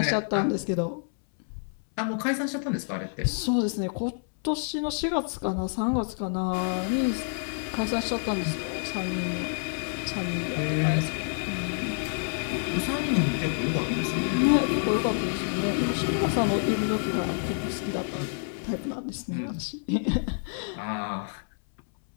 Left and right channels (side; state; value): right; silent; 59 dB below the other